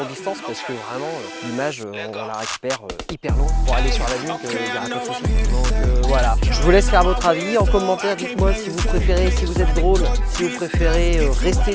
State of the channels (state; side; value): identical; both; correlation 1.00